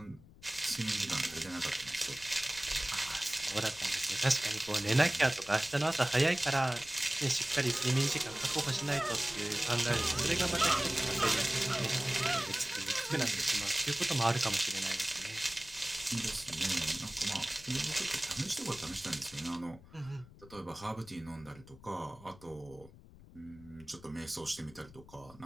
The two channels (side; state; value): left; noise; rumble, 21 dB below the sound